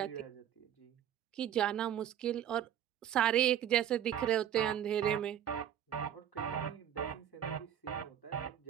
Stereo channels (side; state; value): left; quieter; 10.3 dB